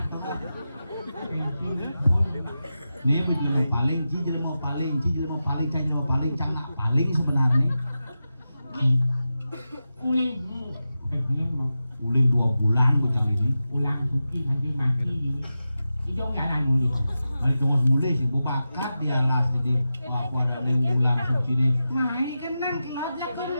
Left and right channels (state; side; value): inverted; both; correlation -0.92